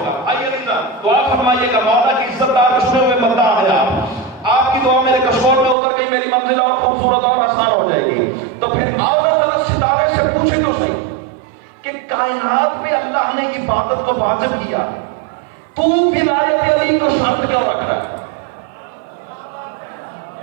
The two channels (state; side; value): drops out; left; at 5.8 s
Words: گا۔ آئیے دعا فرمائیے گا، مولا کی عزت دار چنے ہوئے بندہ ہے آپ کی دعا میرے کشور میں اتر گئی، میری منزل اور خوبصورت اور آسان ہو جائے گی۔ تو پھر آؤ ذرا ستارے سے پوچھے تو صحیح کہ کائنات میں اللہ نے عبادت کو واجب کیا، تو ولایت علی کو شرط کیوں رکھ رہا ہے؟